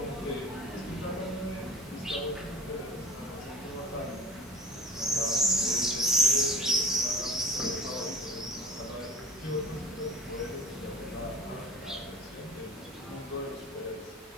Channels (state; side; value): normal; both; correlation 0.40